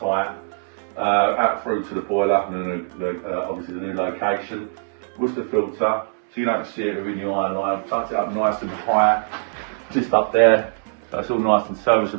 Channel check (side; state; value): left; silent; 64 dB below the other